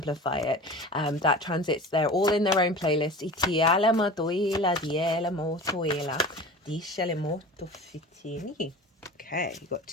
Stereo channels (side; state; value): both; normal; correlation 0.36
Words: it. That transits, they're all in their own playlist. Okay, you got